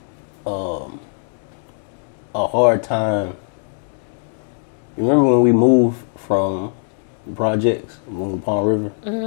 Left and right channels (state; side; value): silent; right; digital silence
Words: a hard time? You remember when we moved from projects, moved to Palm River?